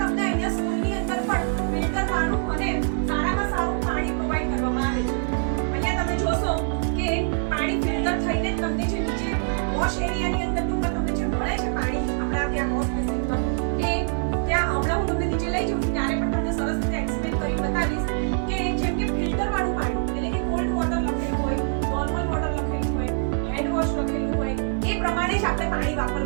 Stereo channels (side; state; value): left; silent; digital silence